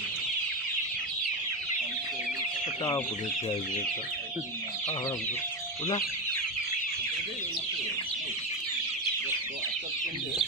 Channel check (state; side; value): normal; both; correlation 0.14